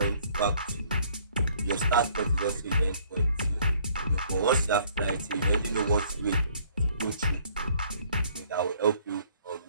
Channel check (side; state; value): both; inverted; correlation -0.61